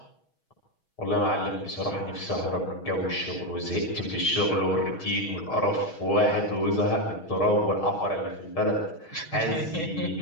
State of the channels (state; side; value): late; right; 6.3 ms